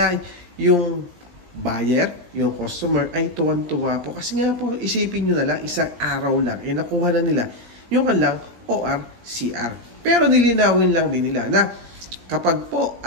yung buyer, yung customer ay tuwan-tuwa po. Kasi nga po, isipin nyo na lang, isang araw lang, nakuha na nila yung kanilang ORCR. Pero nilinawin lang din nila na kapag po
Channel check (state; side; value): late; left; 17 ms